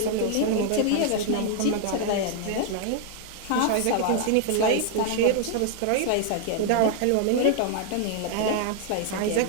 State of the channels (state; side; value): different; both; correlation 0.00